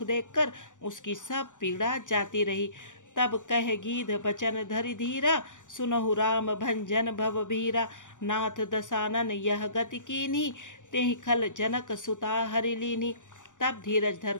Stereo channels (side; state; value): right; late; 0.87 ms